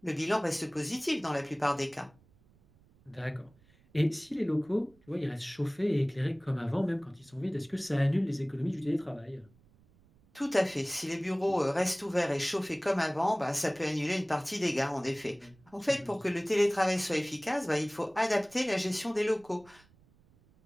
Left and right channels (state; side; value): noise; right; rumble, 30 dB below the sound